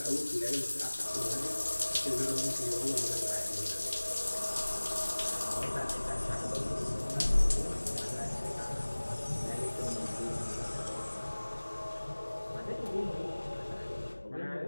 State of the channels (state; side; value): inverted; both; correlation -1.00